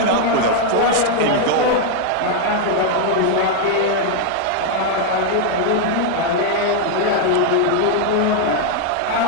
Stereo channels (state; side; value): different; both; correlation 0.00